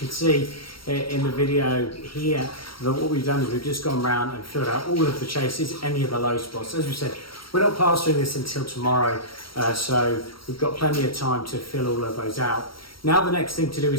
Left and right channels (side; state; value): right; late; 0.74 ms